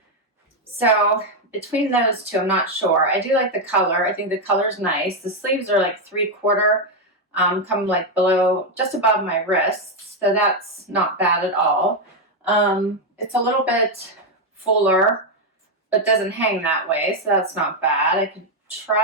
So between those two, I'm not sure. I do like the color. I think the color's nice. The sleeves are like 3/4 come like below, just above my wrists, so that's not bad at all. It's a little bit fuller, but doesn't hang that way, so that's not bad. I could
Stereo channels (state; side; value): normal; both; correlation 0.03